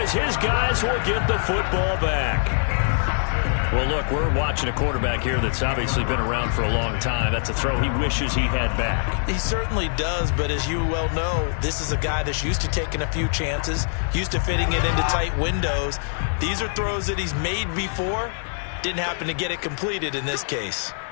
his guys will get the football back. Well, look, we're watching a quarterback here that's obviously been around for a long time. That's a throw he wishes he had back. He certainly does, but as you well know, this is a guy that's used to taking a few chances, used to fitting it into tight windows. These are throws that he's made before. Didn't happen to get it completed in this case.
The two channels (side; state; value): right; silent; 63 dB below the other